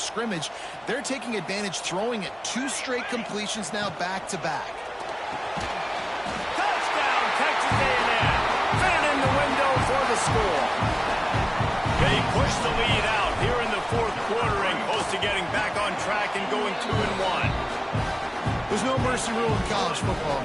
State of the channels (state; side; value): identical; both; correlation 1.00